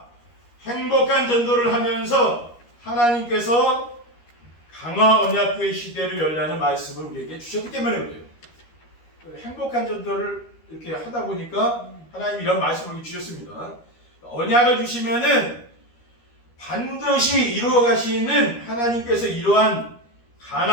행복한 전도를 하면서 하나님께서 강화 언약교회 시대를 열라는 말씀을 우리에게 주셨기 때문에 그래요. 행복한 전도를 이렇게 하다 보니까 하나님이 이런 말씀을 주셨습니다. 언약을 주시면은 반드시 이루어 가시는 하나님께서 이러한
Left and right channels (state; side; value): late; right; 13 ms